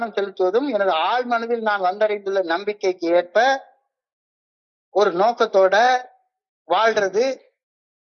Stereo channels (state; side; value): identical; both; correlation 1.00